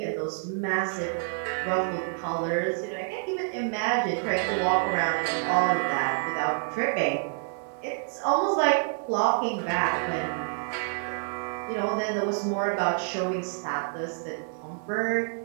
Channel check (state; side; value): silent; left; digital silence